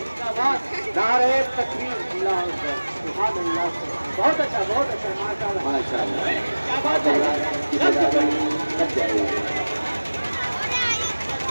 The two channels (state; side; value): inverted; both; correlation -1.00